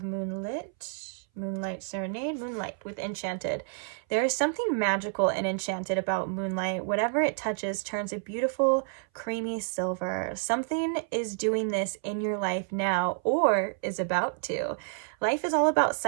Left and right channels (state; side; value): silent; left; 58 dB below the other